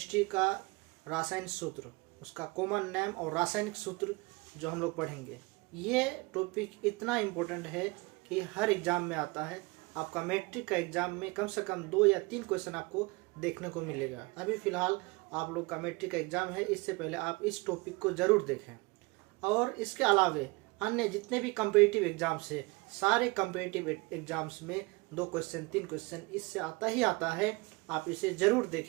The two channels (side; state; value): left; quieter; 25.9 dB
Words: का रासायनिक सूत्र, उसका कॉमन नेम और रासायनिक सूत्र जो हम लोग पढ़ेंगे। ये टॉपिक इतना इम्पोर्टेंट है कि हर एग्ज़ाम में आता है। आपका मैट्रिक का एग्ज़ाम में कम से कम 2 या 3 क्वेश्चन आपको देखने को मिलेगा। अभी फ़िलहाल आप लोग का मैट्रिक का एग्ज़ाम है, इससे पहले आप इस टॉपिक को ज़रूर देखें। और इसके अलावे अन्य जितने भी कम्पिटिटिव एग्ज़ाम्स है, सारे कम्पिटिटिव एग्ज़ाम्स में 2 क्वेश्चन 3 क्वेश्चन इससे आता ही आता है। आप इसे ज़रूर